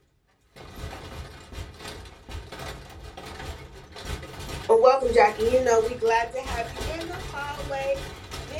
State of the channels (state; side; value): identical; both; correlation 1.00